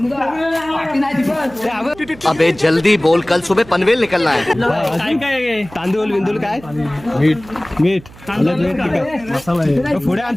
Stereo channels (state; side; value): noise; right; hum, 21 dB below the sound